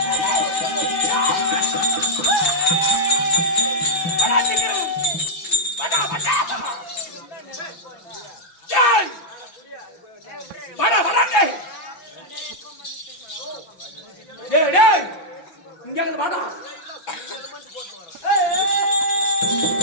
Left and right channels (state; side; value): late; right; 5.9 ms